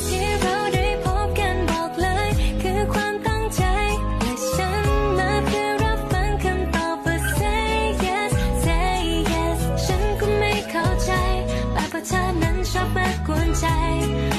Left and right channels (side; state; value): both; identical; correlation 1.00